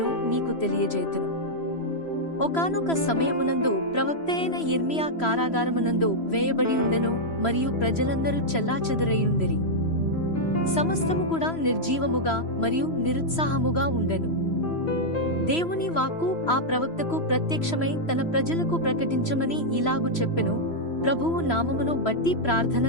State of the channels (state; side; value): late; right; 3.0 ms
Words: నీకు తెలియజేతును. ఒకానొక సమయమునందు ప్రవక్తయైన యిర్మీయా కారాగారమునందు వేయబడి ఉండెను, మరియు ప్రజలందరూ చెల్లాచెదరయుండిరి. సమస్తము కూడా నిర్జీవముగా మరియు నిరుత్సాహముగా ఉండెను. దేవుని వాక్కు ఆ ప్రవక్తకు ప్రత్యక్షమై తన ప్రజలకు ప్రకటించమని ఇలాగు చెప్పెను, ప్రభువు నామమును బట్టి ప్రార్థన